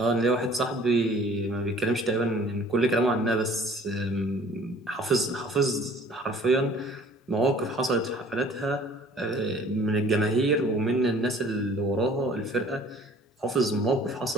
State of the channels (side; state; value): both; normal; correlation 0.51